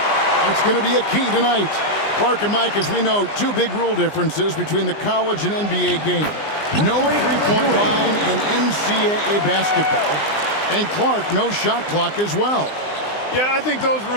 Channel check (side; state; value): right; late; 20 ms